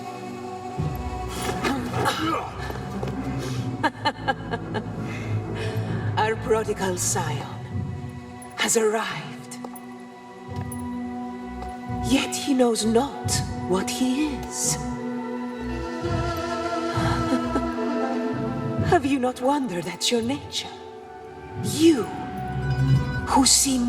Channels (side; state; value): both; identical; correlation 1.00